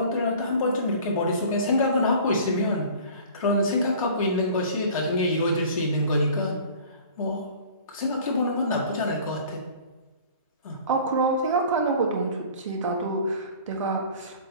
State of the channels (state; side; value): inverted; both; correlation -0.46